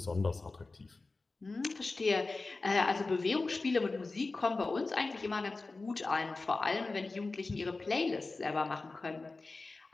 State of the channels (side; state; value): right; quieter; 3.6 dB